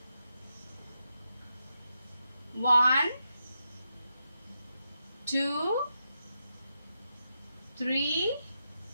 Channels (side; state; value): both; inverted; correlation -0.86